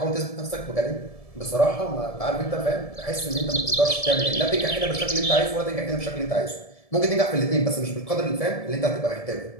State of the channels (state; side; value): late; right; 1.7 ms